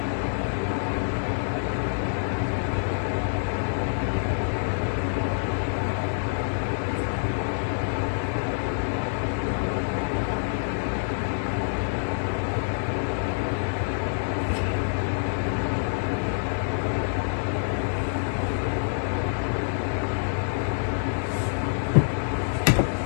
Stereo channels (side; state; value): right; silent; digital silence